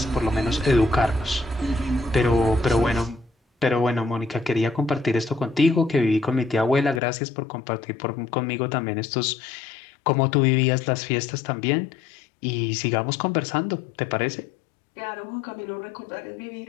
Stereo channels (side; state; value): right; drops out; at 7.0 s